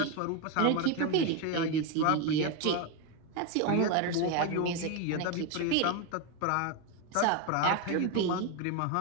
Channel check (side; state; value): both; different; correlation 0.02